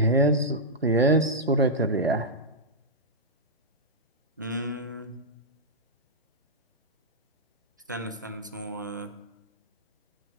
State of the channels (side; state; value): both; normal; correlation -0.09